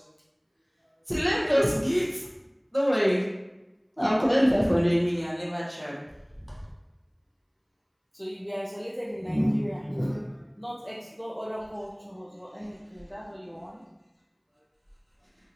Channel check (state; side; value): identical; both; correlation 1.00